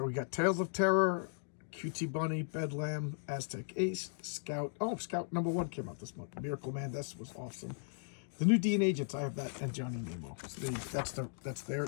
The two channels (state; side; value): silent; right; digital silence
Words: we got Tales of Terror, Cutie Bunny, Bedlam, Aztec Ace, Scout. Oh, Scout #1 came out this month. Miracle Man, this was awesome. The New D and Agents, I have that, and Johnny Nemo. So that's their